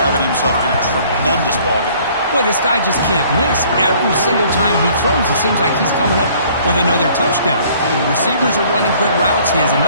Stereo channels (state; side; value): inverted; both; correlation -0.57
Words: himself in a tremendous ballgame. Boy, this guy just can't miss. Every single time he throws, it seems like he's coming up with another touchdown. The receivers are running good routes. He has